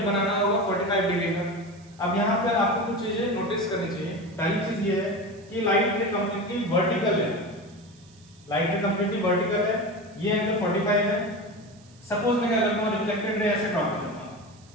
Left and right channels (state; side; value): noise; right; hiss, 28 dB below the sound